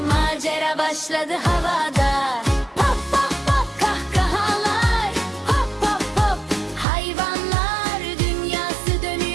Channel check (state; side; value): drops out; left; at 6.9 s